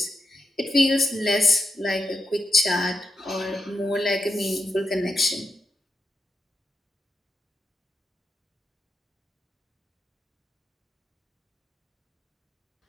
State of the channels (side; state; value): both; normal; correlation 0.85